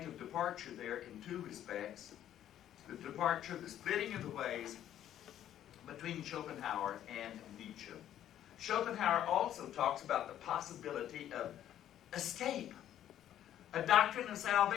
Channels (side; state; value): right; quieter; 11.3 dB